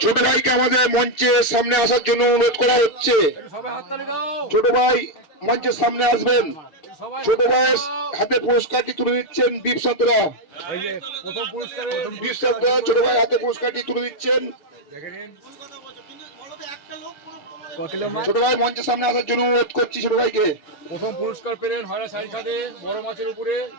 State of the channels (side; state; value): right; late; 6.9 ms